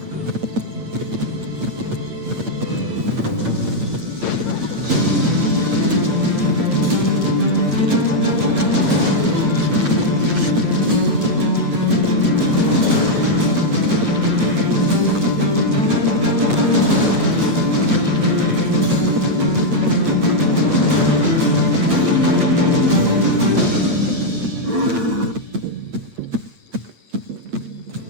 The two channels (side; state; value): left; late; 8.7 ms